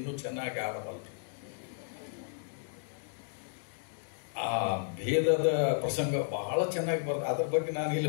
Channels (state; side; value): silent; right; digital silence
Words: ಚೆನ್ನಾಗಿ ಆಡಬಲ್ಲರು. ಆ ಭೇದದ ಪ್ರಸಂಗ ಬಹಳ ಚೆನ್ನಾಗಿ ಬರ್ತದೆ. ಅದ್ರ ಬಗ್ಗೆ ನಾನು